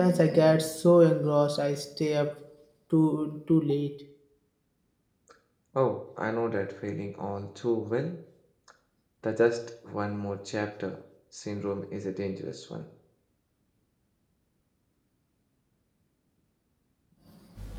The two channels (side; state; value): both; identical; correlation 1.00